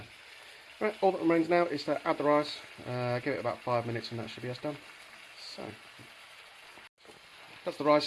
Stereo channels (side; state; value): both; identical; correlation 1.00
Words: Right, all that remains now is to add the rice, give it about 5 minutes and that should be us done. So, that's the